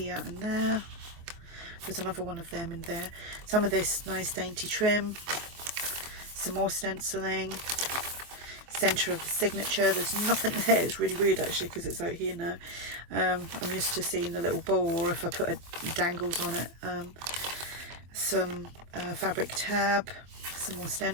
and there. There's another one of them in there. Some of this nice dainty trim. Some more stenciling. Center of the signature. There's nothing there. It's really weird actually because it's out here now. I'm used to seeing the little bowl, or if I put dangles on it. Some fabric tab, some more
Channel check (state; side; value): late; left; 24 ms